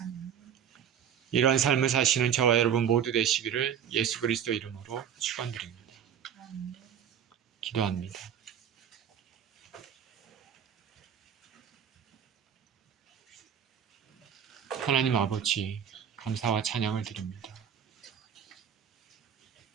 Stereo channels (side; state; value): left; quieter; 8.7 dB